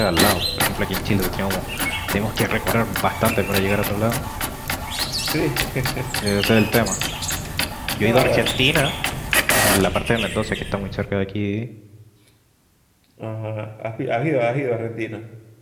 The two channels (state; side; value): identical; both; correlation 1.00